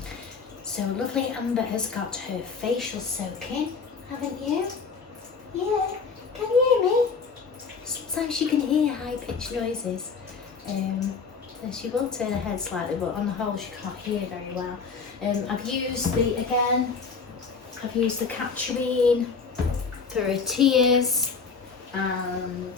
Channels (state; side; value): quieter; right; 5.2 dB